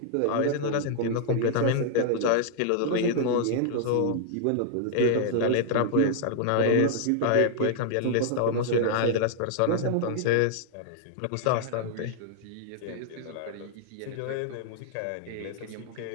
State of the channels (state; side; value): different; both; correlation -0.01